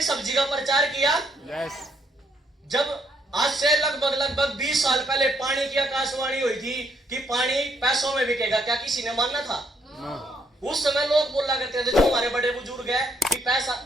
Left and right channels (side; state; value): both; normal; correlation 0.73